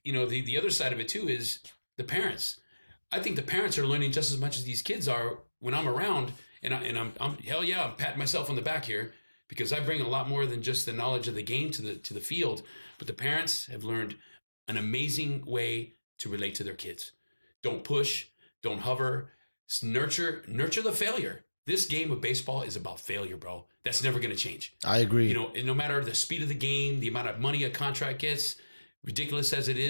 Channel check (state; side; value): inverted; both; correlation -1.00